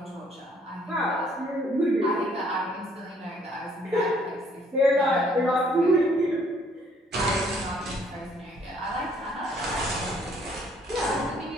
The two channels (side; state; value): both; normal; correlation 0.63